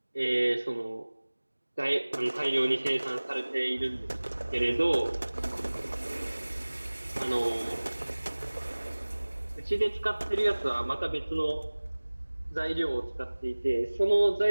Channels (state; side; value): inverted; both; correlation -1.00